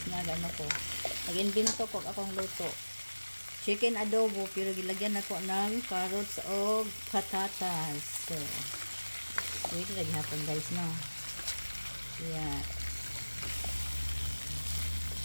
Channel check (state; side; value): inverted; both; correlation -1.00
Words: nagano ko. Nag-invento ko akong luto. Chicken adobo pero gilagyan ako ng carrots o patatas. So, wait lagi hapon guys no. Yeah.